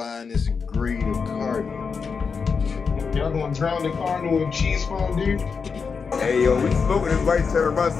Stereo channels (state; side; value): quieter; right; 5.5 dB